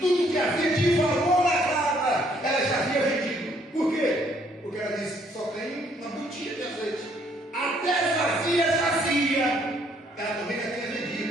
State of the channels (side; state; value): both; normal; correlation 0.66